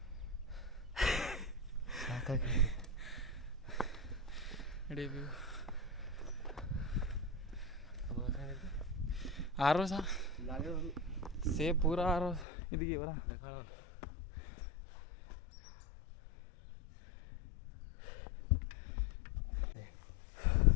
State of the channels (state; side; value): drops out; right; at 12.5 s